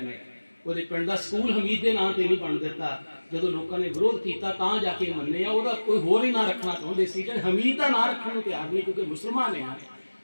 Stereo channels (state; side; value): inverted; both; correlation -1.00